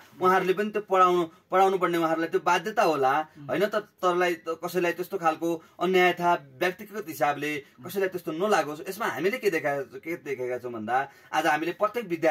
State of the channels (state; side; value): identical; both; correlation 1.00